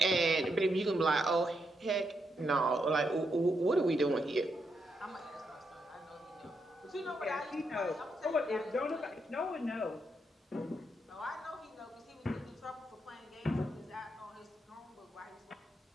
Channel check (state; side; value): normal; both; correlation 0.81